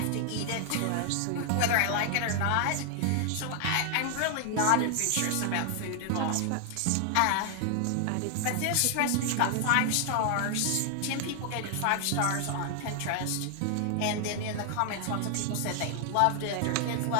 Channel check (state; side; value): different; both; correlation 0.00